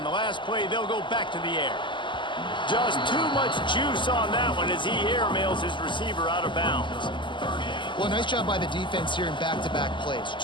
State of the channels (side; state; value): right; late; 0.24 ms